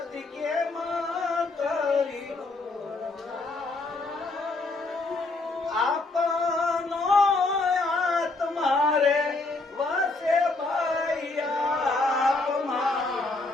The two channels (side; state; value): right; quieter; 3.3 dB